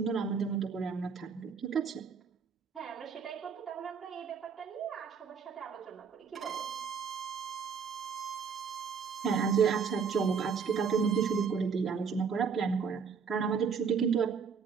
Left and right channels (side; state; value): left; quieter; 6.1 dB